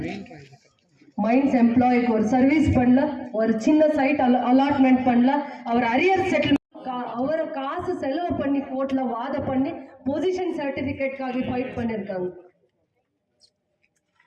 மைன்ஸ் எம்ப்ளாய்க்கு ஒரு சர்வீஸ் பண்ணல, ஒரு சின்ன சைட் அலாட்மெண்ட் பண்ணல, அவர் அரியர் செட்டில்மெண்ட் அவரை காசு செலவு பண்ணி கோர்ட்ல வாத பண்ணி பொசிஷன் சர்டிபிகேட்காக ஃபைட் பண்ணிருக்காங்க.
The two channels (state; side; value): identical; both; correlation 1.00